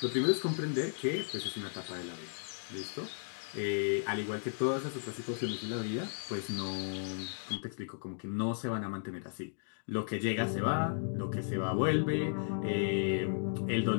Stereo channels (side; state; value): right; silent; digital silence